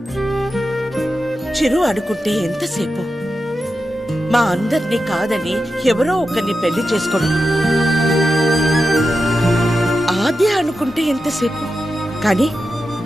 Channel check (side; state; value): both; normal; correlation 0.90